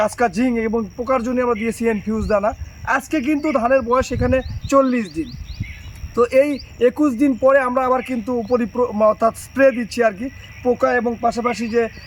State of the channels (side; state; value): both; identical; correlation 1.00